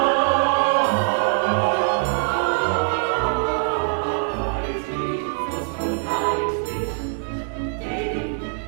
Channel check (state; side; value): silent; left; 64 dB below the other